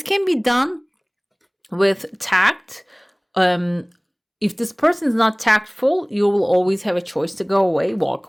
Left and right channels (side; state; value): both; identical; correlation 1.00